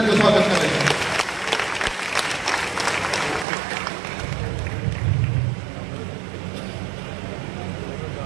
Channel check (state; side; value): drops out; left; at 3.5 s